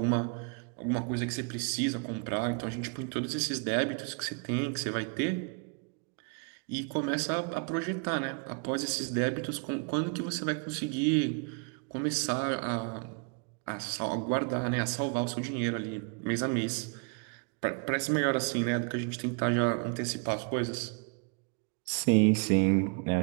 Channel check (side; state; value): left; quieter; 35.6 dB